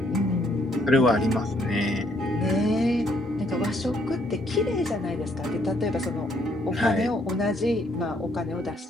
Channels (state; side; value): normal; both; correlation 0.69